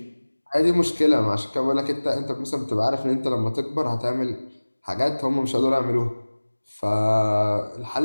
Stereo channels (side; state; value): both; inverted; correlation -1.00